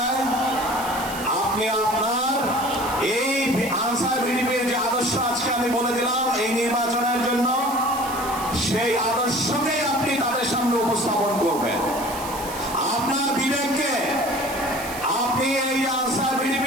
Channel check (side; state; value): right; noise; hiss, 12 dB below the sound